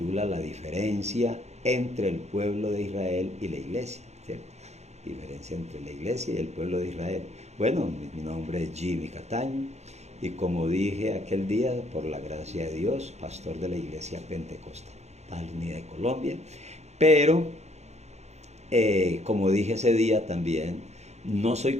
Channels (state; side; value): late; left; 0.32 ms